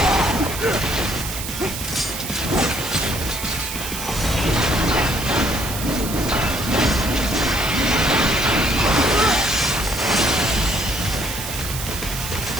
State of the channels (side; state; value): right; noise; hiss, 7 dB below the sound